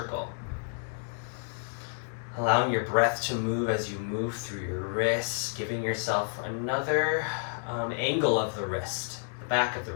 Allowing your breath to move as you move through your wrists, giving yourself another angle of the wrist, the back of the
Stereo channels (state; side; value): silent; right; 58 dB below the other